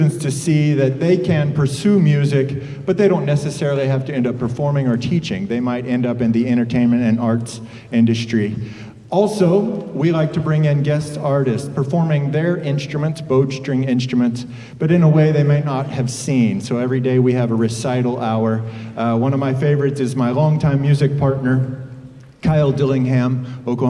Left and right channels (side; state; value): both; identical; correlation 1.00